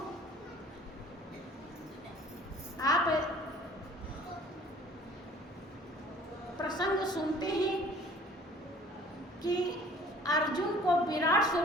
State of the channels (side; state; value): both; normal; correlation 0.52